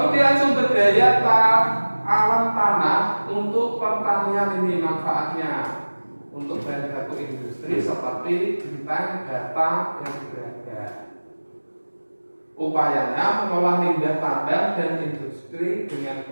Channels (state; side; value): inverted; both; correlation -1.00